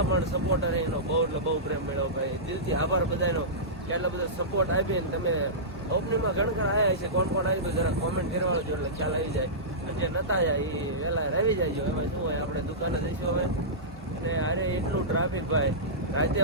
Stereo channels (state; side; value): normal; both; correlation -0.17